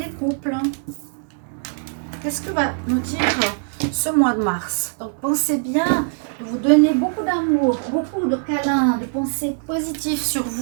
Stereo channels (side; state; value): left; silent; 64 dB below the other